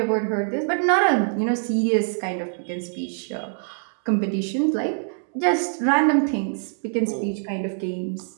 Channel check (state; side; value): silent; left; digital silence